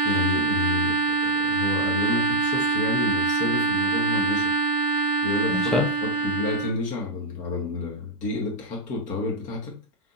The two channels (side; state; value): both; normal; correlation 0.00